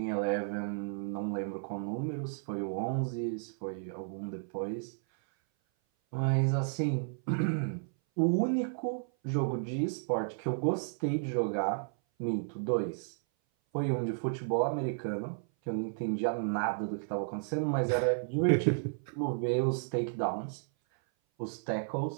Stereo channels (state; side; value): silent; left; 56 dB below the other